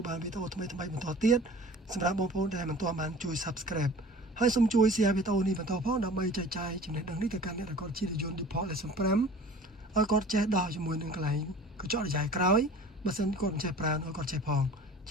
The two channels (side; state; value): both; normal; correlation 0.44